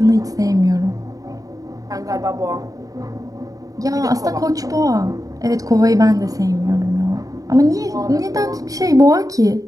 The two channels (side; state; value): left; late; 0.17 ms